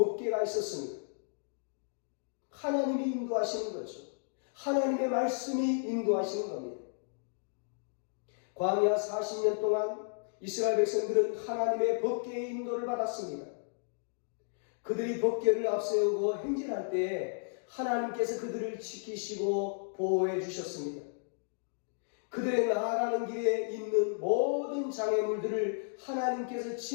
있었습니다. 하나님이 인도하시는 거죠. 하나님의 말씀이 인도하시는 겁니다. 광야 40년 동안 이스라엘 백성들은 하나님의 번개의 인도를 받았습니다. 그들이 번개를 앞세우고 행진할 때에 하나님께서 그들을 지키시고 보호해 주셨습니다. 그들의 나아가는 길에 있는 모든 장애물들을 하나님께서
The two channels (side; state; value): right; silent; digital silence